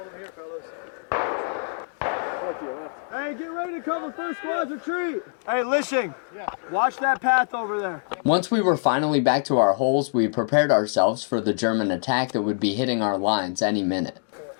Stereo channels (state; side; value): silent; right; digital silence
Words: them here, fellas. Hey, get ready to cover first squad's retreat. Hey, Lishing. Yeah. Watch that path over there. Once we were finally back to our holes, we prepared ourselves for the German attack that would be hitting our lines any minute.